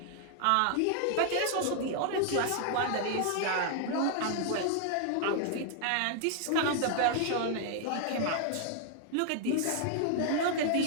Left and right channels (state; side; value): different; both; correlation 0.00